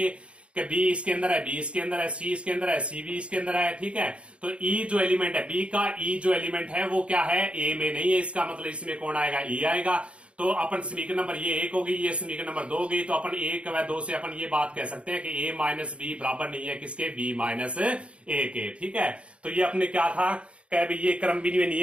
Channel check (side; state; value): left; late; 0.060 ms